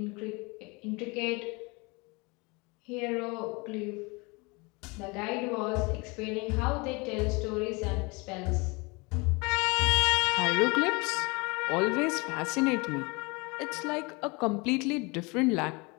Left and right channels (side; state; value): right; quieter; 27.6 dB